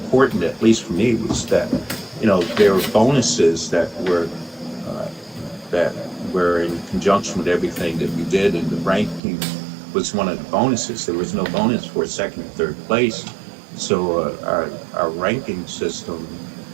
at least for me, was that, there were bonuses that were in conjunction with everything that we did, and the ranking was one of the bonuses. There was no bonus for second and third place. So our ranking system,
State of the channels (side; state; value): left; drops out; at 9.2 s